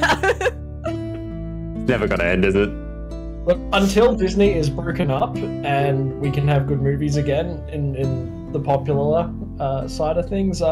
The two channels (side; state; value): both; identical; correlation 1.00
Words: Never gonna end, is it? until Disney is broken up and we can have good movies again in the popular side of things,